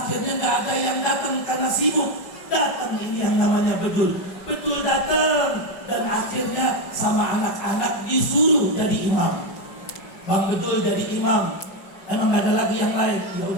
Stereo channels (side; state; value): right; late; 5.4 ms